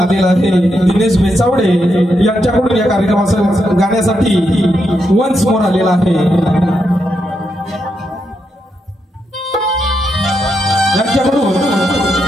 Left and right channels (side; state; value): both; normal; correlation 0.82